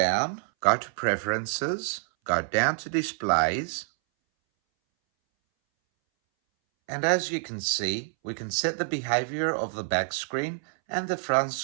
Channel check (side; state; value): left; silent; 60 dB below the other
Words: go to preferences, go down to displays. And as you can see, we can set the behavior of the back screen and the front